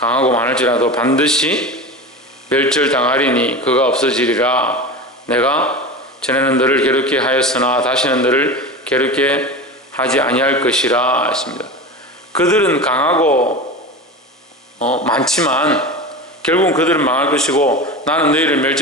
반드시 멸절당하리니 그가 없어지리라. 내가 전에는 너를 괴롭게 하였으나 다시는 너를 괴롭게 하지 아니할 것이라 했습니다. 그들은 강하고 많지만 결국은 그들은 망할 것이고 나는 너희를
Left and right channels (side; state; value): both; normal; correlation 0.28